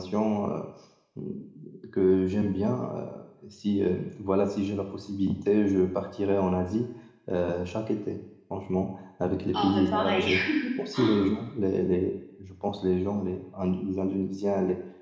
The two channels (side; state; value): both; identical; correlation 1.00